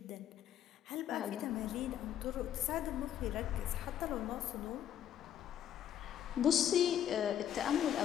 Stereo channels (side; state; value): right; quieter; 10.3 dB